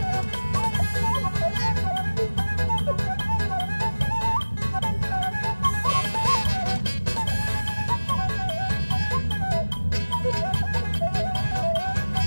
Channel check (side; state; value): both; inverted; correlation -1.00